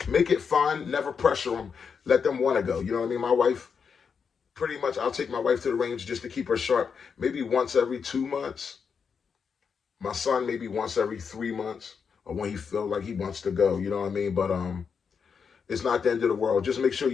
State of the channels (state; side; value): quieter; right; 6.2 dB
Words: make it fun. Never pressure them. Let them want to go. You know what I mean? My wife, pretty much, I'll take my wife to the range just to keep her sharp. Maybe once every 2 months. My son maybe once every 3 months, or when he feels like he wants to go. You know what I mean? But it's not the end of the world. Just make sure